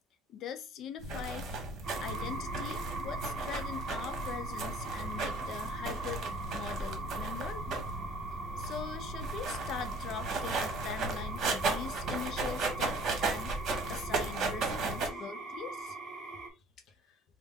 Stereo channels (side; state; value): both; normal; correlation 0.52